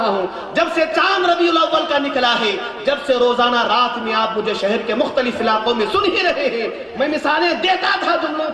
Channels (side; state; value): both; identical; correlation 1.00